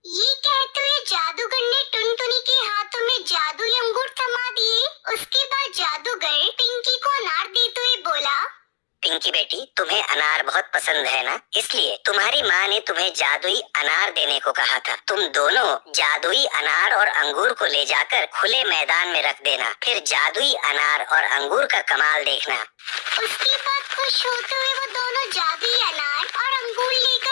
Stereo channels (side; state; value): right; silent; digital silence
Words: ये कहते हुए जादूगर ने टुनटुनी के हाथों में जादुई अंगूर थमा दिए। उसके बाद जादूगर पिंकी को अनार देते हुए बोला, पिंकी बेटी, तुम्हें अनार बहुत पसंद है ना, इसलिए तुम्हारी माँ ने तुम्हें जादुई अनार देने को कहा था। तुम दोनों जादुई अनार और अंगूर को ले जाकर खुले मैदान में रख देना, फिर जादुई अनार और अंगूर का कमाल देखना। उसके बाद खुश होते हुए वो दोनों जादुई अनार और अंगूर